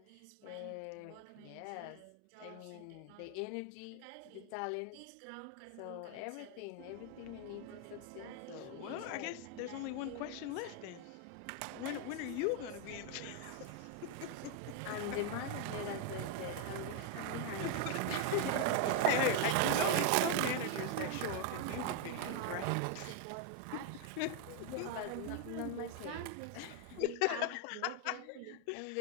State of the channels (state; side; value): different; both; correlation 0.01